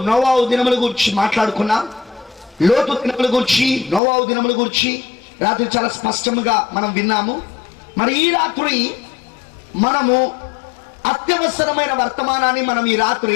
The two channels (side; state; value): right; drops out; at 4.0 s